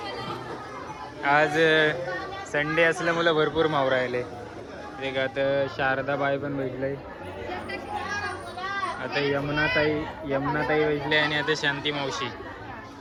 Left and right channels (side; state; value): both; identical; correlation 1.00